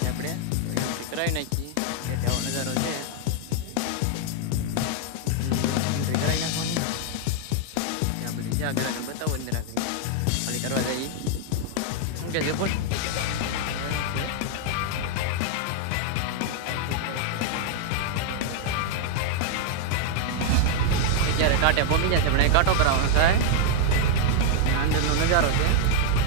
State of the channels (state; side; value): different; both; correlation 0.00